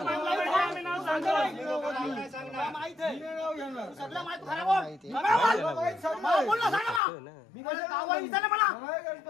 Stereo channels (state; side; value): drops out; right; at 7.0 s